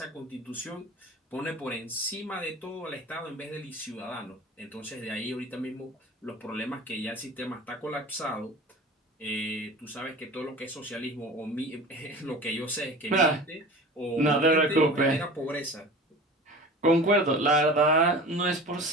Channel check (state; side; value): normal; both; correlation 0.37